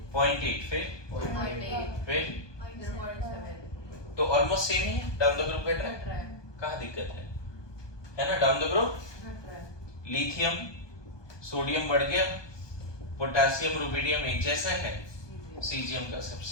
फिर तो ऑलमोस्ट सेम ही है, डाउन द ग्रुप घट रहा है। कहाँ दिक्कत है ना। Down the group lithium sodium बढ़ गया, पोटेशियम रुबिडियम एक जैसा है, सीजियम का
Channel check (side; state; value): right; late; 1.2 ms